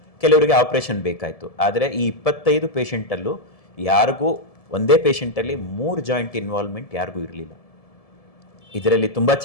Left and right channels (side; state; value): right; late; 1.7 ms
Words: ಕೆಲವರಿಗೆ ಆಪರೇಷನ್ ಬೇಕಾಯಿತು. ಆದರೆ ಈ 25 ಪೇಷಂಟಲ್ಲೂ ಯಾರಿಗೂ ಒಂದೇ ಪೇಷಂಟಲ್ಲಿ 3 ಜಾಯಿಂಟ್ ಇನ್ವಾಲ್ವ್ಮೆಂಟ್ ಯಾರಿಗೂ ಇರಲಿಲ್ಲ. ಇದರಲ್ಲಿ ತುಂಬ